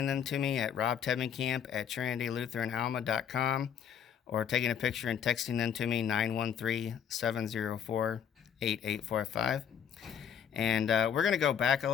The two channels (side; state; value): right; quieter; 8.4 dB